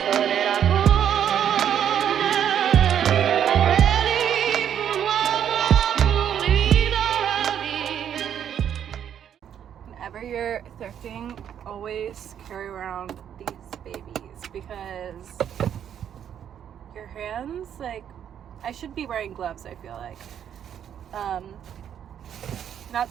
Whenever you're thrifting, always carry around these babies, because your hands, like, I should be wearing gloves, I feel like. Not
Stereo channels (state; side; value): quieter; left; 9.3 dB